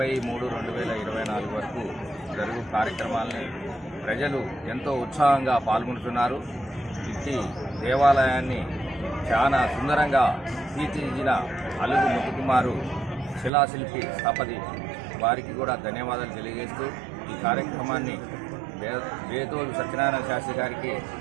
వరకు జరుగు కార్యక్రమాలని ప్రజలు ఎంతో ఉత్సాహంగా పాల్గొంటున్నారు. ఇట్టి దేవాలయాన్ని చాలా సుందరంగా తీర్చిదిద్దిన అలుగు ముత్తుకుమారు శిలాశిల్పి స్థపతి వారికి కూడా ధన్యవాదాలు తెలియజేస్తూ ఈ కార్యక్రమాన్ని బేతోలు సత్యనారాయణ శాస్త్రి గారికి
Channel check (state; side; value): drops out; left; at 13.5 s